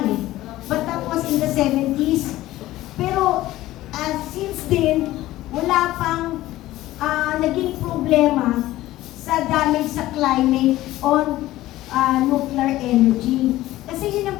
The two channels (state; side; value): quieter; right; 15.9 dB